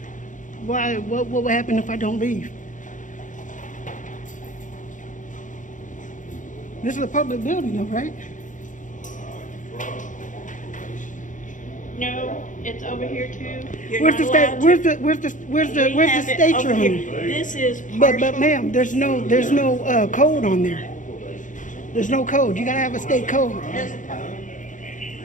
Why? What will happen if I don't leave? This is a public building, though, right? No, it's over here too. You're Where's not the state? allowed to- Where's the We have it state over you're here. on? This is But partial. ma'am, there's no code on there. There's no code. You gotta have a state code. There's a code.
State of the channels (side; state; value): right; late; 0.37 ms